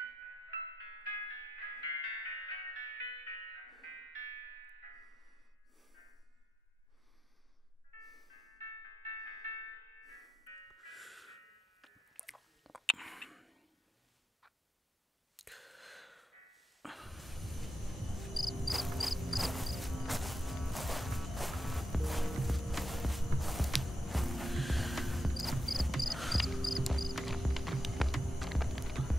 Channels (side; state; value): both; normal; correlation 0.87